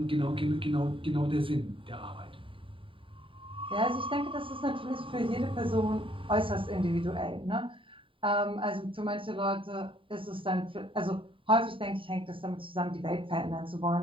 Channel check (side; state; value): left; late; 0.25 ms